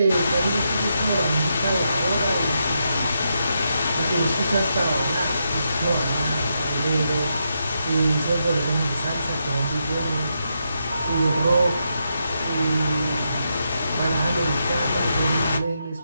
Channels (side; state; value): both; inverted; correlation -0.82